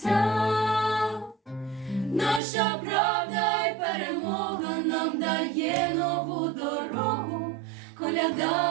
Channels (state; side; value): drops out; left; at 2.4 s